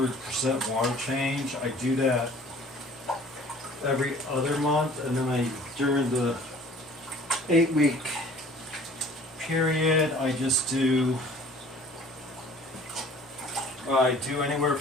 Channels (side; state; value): both; normal; correlation 0.50